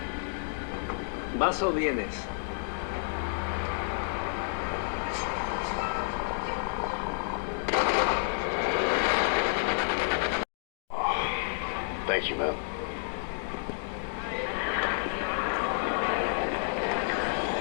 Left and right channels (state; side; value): silent; right; digital silence